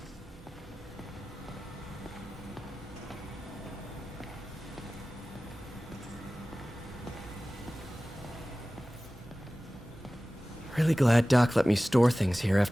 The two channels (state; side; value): normal; both; correlation 0.97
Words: Really glad Doc let me store things here